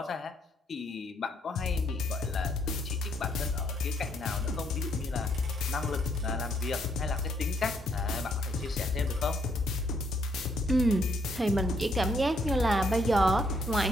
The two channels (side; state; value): both; normal; correlation 0.72